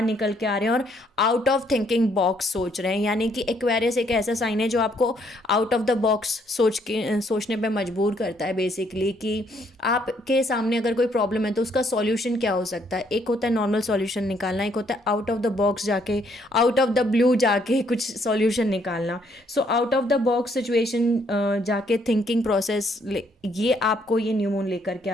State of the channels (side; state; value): both; normal; correlation 0.69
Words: निकल के आ रहे हैं और आउट ऑफ थिंकिंग बॉक्स सोच रहे हैं। यानी कि एक्वेरियस एक ऐसा साइन है जो आपको आउट ऑफ द बॉक्स सोचने पर मजबूर करता है बेसिकली, कि आपके सामने अगर कोई प्रॉब्लम है तो उसका सॉल्यूशन क्या हो सकता है। एक होता है नॉर्मल सॉल्यूशन निकालना, एक होता है आउट ऑफ द बॉक्स जाके, आउट ऑफ द ब्लू जाके कुछ सॉल्यूशन निकालना। So out of the box situation जाके थिंकिंग प्रोसेस, ये आपको ये न्यू मून लेकर के